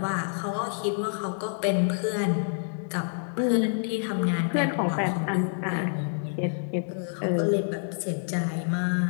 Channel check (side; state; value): right; silent; digital silence